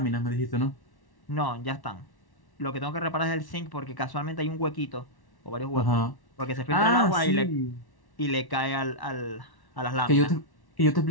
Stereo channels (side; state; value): right; late; 1.1 ms